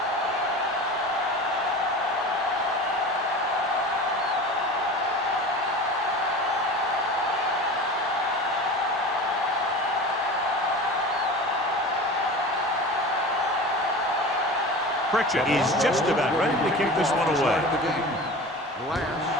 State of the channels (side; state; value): both; normal; correlation 0.34